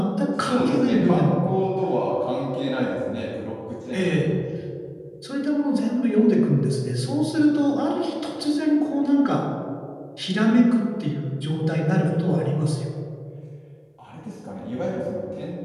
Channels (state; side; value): identical; both; correlation 1.00